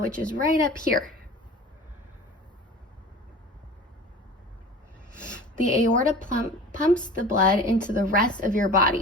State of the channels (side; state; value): both; normal; correlation 0.39